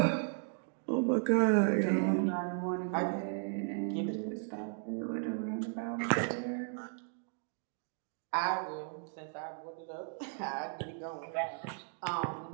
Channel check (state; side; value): silent; left; 54 dB below the other